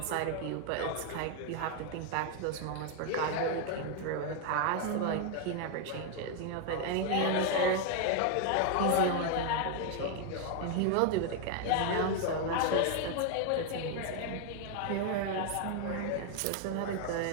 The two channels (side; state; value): both; different; correlation 0.01